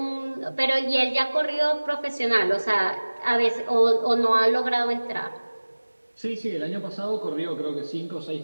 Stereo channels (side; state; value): both; inverted; correlation -1.00